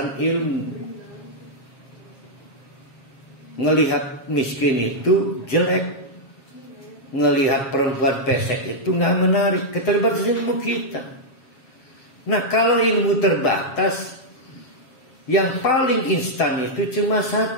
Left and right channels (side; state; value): right; late; 7.3 ms